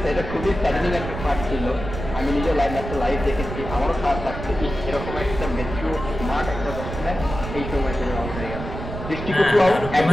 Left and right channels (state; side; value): noise; right; rumble, 8 dB below the sound